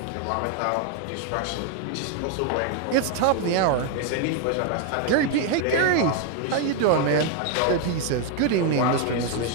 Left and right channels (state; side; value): different; both; correlation 0.00